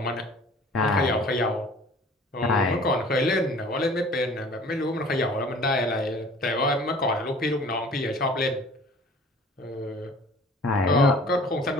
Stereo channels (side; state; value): both; normal; correlation 0.48